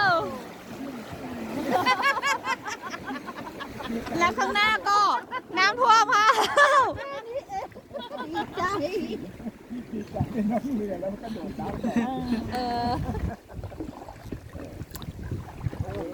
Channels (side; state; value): both; identical; correlation 1.00